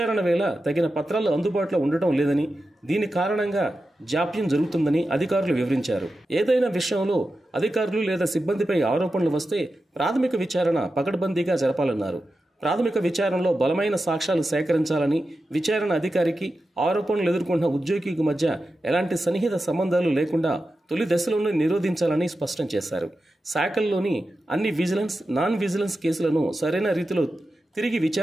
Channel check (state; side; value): normal; both; correlation 0.91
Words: వేళ తగిన పత్రాలు అందుబాటులో ఉండటం లేదని, దీని కారణంగా జాప్యం జరుగుతుందని అధికారులు వివరించారు. ఏదైనా విషయంలో అధికారులు లేదా సిబ్బందిపై ఆరోపణలు వస్తే ప్రాథమిక విచారణ పకడ్బందీగా జరపాలన్నారు. ప్రాథమిక విచారణలో బలమైన సాక్ష్యాలు సేకరించాలని, విచారణ అధికారికి ఆరోపణలు ఎదుర్కొంటున్న ఉద్యోగికి మధ్య ఎలాంటి సన్నిహిత సంబంధాలు లేకుండా తొలి దశలోనే నిరోధించాలని స్పష్టం చేశారు. శాఖల్లోని అన్ని విజిలెన్స్, నాన్ విజిలెన్స్ కేసులను సరైన రీతిలో తిరిగి